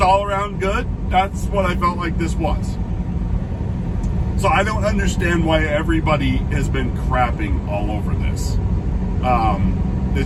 all around good. That's what I felt like this was. So I don't understand why everybody has been crapping all over this.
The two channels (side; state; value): both; identical; correlation 1.00